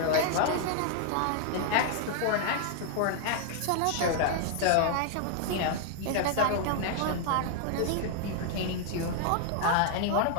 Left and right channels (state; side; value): different; both; correlation 0.00